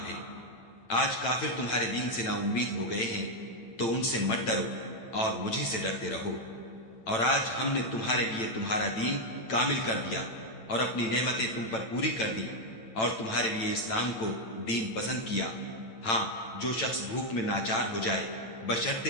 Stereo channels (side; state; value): right; late; 8.9 ms